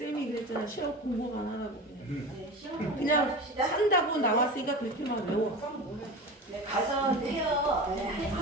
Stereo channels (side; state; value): both; normal; correlation 0.30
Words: 그랬잖아 시험 공부만 하라고 그냥. 네, 시험 공부만 그냥 합시다. 한다고 나왔으니까 그렇게만 외워. 네, 가서 해요. 네,